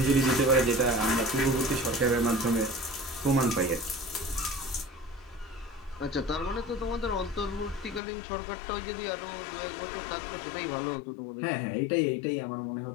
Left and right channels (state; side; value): drops out; right; at 8.0 s